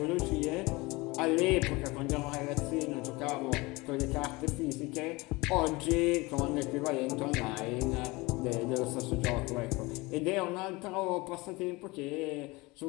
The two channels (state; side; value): quieter; right; 23.4 dB